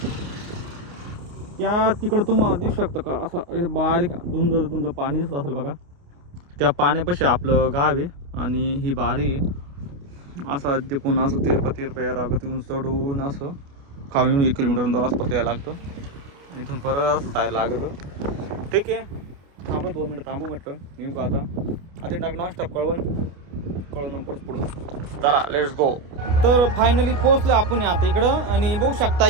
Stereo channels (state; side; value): late; left; 28 ms